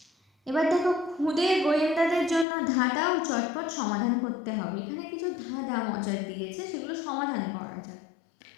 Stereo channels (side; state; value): right; drops out; at 2.5 s